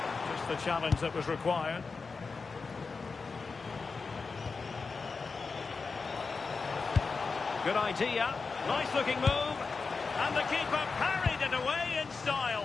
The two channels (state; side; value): quieter; right; 4.6 dB